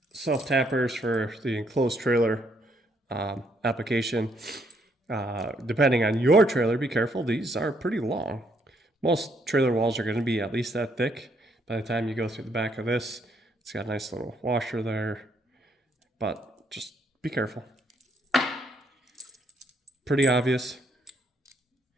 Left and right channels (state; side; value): normal; both; correlation 0.71